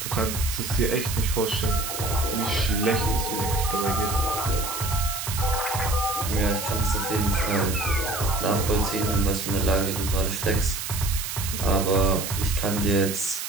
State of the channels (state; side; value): noise; right; hiss, 5 dB below the sound